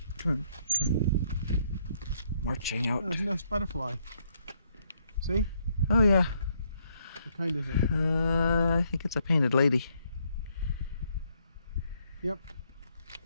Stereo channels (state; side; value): inverted; both; correlation -0.72